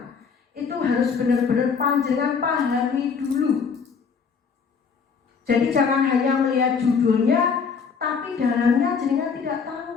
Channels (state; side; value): quieter; right; 5.8 dB